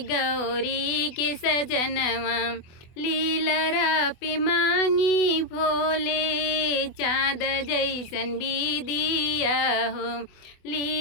गौरी के सजनवा। लीलरा पे मांगी भोले, चाँद जैसन बिदिया हो।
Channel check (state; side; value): late; right; 24 ms